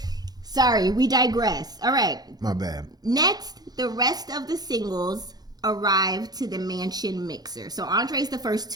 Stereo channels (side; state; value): left; late; 0.19 ms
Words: Sorry, we digress. All right. My bad. Next, the rest of the singles arrive to the mansion mixer. So Andre's the first